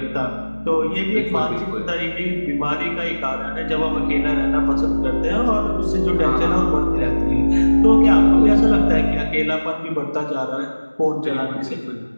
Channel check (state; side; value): inverted; both; correlation -1.00